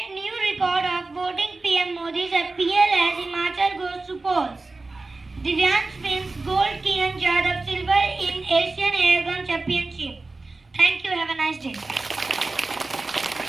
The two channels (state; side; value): quieter; left; 3.4 dB